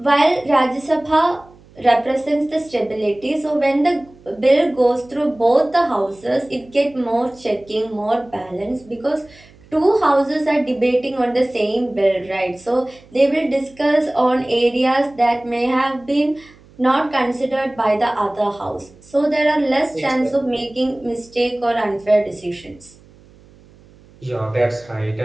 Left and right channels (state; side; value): noise; right; hum, 26 dB below the sound